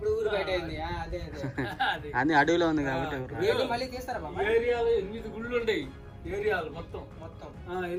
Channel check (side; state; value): both; identical; correlation 1.00